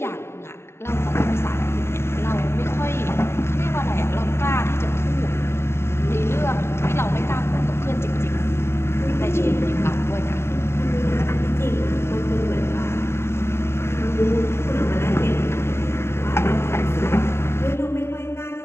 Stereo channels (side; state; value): right; late; 0.12 ms